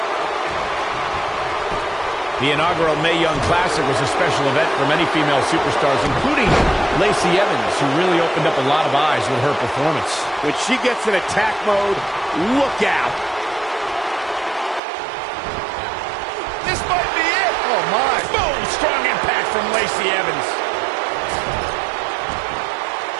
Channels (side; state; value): left; drops out; at 14.8 s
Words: The inaugural Mae Young Classic was a special event for many female superstars, including Lacey Evans, who really opened up a lot of eyes with her performance. When she gets in attack mode, look out. This might be it. Oh, my. Boom! Strong impact from Lacey Evans.